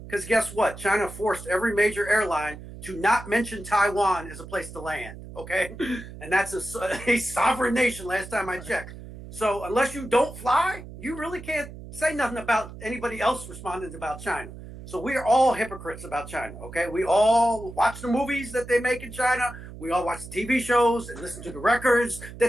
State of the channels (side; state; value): right; noise; hum, 14 dB below the sound